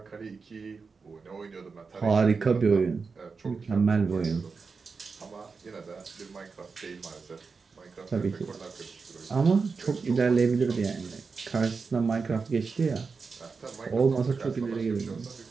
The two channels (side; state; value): left; quieter; 4.8 dB